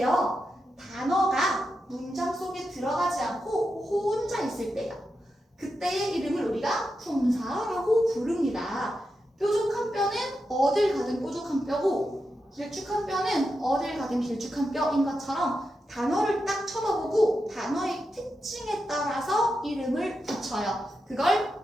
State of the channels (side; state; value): both; normal; correlation 0.88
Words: 단어가 문장 속에 들어가지 않고 혼자 있을 때요. 그때의 이름을 우리가 품사라고 부릅니다. 뾰족한 뼈는 어딜 가든 뾰족한 뼈고 길쭉한 뼈는 어딜 가든 길쭉한 뼈인 것처럼 단어를 딱 쳐다보고 단어의 특징에 따라서 이름을 붙여요. 그걸